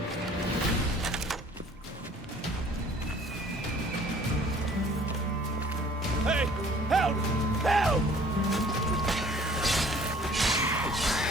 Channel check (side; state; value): both; normal; correlation 0.54